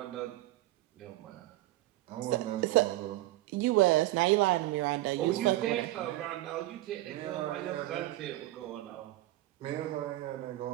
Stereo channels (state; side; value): quieter; left; 16.9 dB